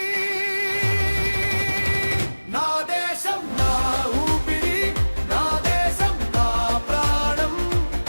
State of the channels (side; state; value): both; inverted; correlation -1.00